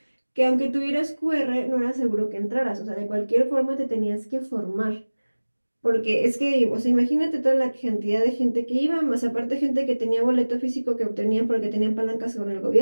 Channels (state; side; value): inverted; both; correlation -1.00